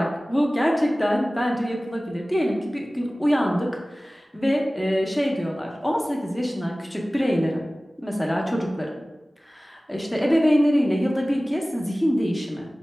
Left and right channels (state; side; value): normal; both; correlation 0.97